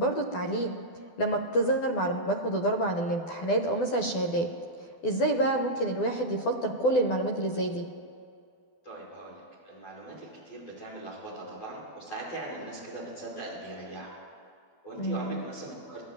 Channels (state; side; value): late; right; 12 ms